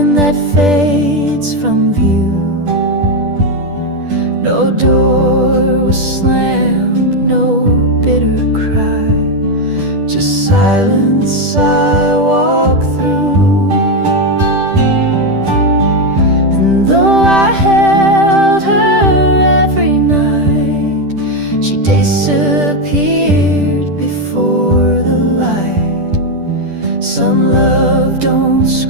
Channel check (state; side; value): late; left; 10 ms